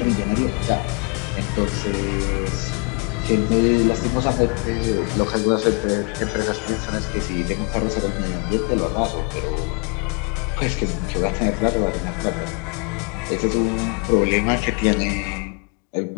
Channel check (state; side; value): quieter; right; 32.8 dB